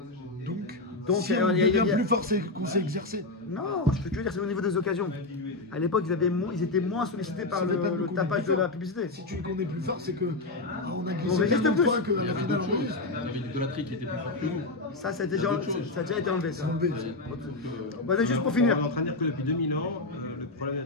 Donc, si on est bien plus fort, c'est qu'on s'est exercé. Non, ce que tu veux dire, c'est au niveau des occasions. À l'époque, ils étaient moins sollicités par le tapage de la publicité. Si tu dis qu'on est plus fort, c'est que on a On glissé résiste tellement de plus. fois qu'à la finale, on réussit. Il y avait une idolâtrie qui était plus forte que nous. Ça a déjà été enlevé. Ça. Enlevé. Bon, juste pour finir. On est en train de dire que depuis 2000 ans, le problème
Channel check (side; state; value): right; quieter; 3.1 dB